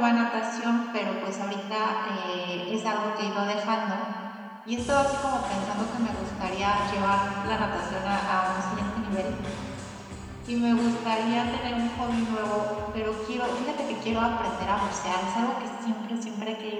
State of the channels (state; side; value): identical; both; correlation 1.00